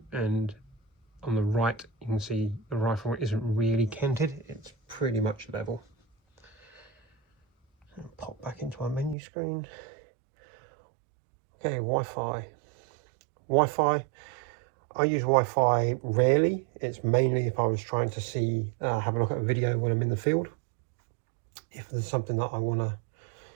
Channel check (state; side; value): drops out; left; at 9.2 s